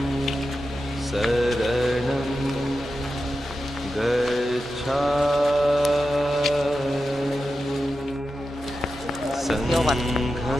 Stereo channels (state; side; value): normal; both; correlation 0.91